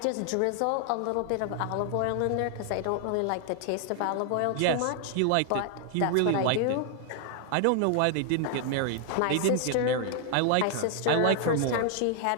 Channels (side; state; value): both; different; correlation 0.00